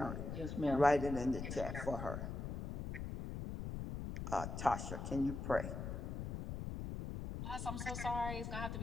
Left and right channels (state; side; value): noise; left; rumble, 5 dB below the sound